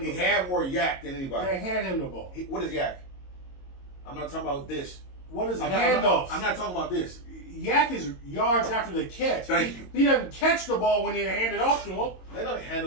He the had ball. more yak than anybody. They handed him the ball. What is yak? I'm not talking about this. What is I'm handoffs? not talking about this. Yak is yards after the catch. Thank you. He doesn't catch the ball when they hand it off to him. They don't hand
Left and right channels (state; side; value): late; right; 22 ms